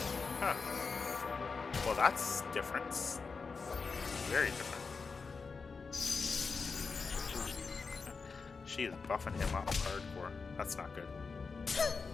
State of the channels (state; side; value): quieter; right; 4.8 dB